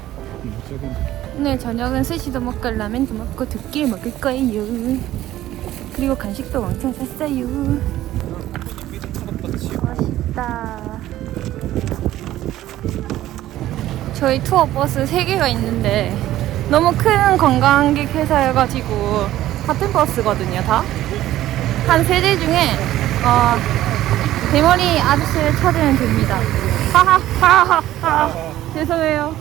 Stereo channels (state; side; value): quieter; left; 14.2 dB